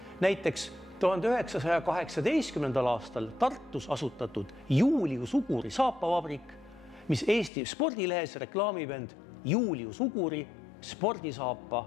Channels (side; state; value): right; drops out; at 7.5 s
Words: Näiteks 1918. aastal Tartus asutatud Julius Uguri saapavabrik, mis Eesti spordilehes reklaamib end Julius Uguri